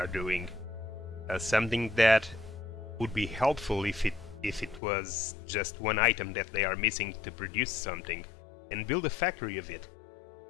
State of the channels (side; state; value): right; drops out; at 4.8 s